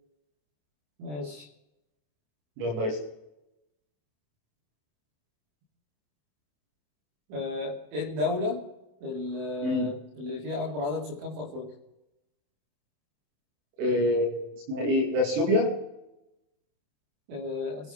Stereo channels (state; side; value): late; left; 27 ms